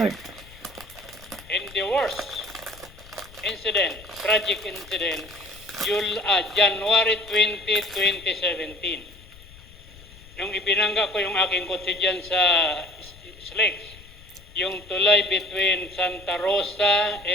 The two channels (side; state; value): left; noise; rumble, 21 dB below the sound